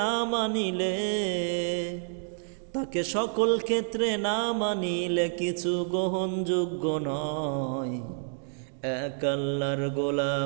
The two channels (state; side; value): silent; left; digital silence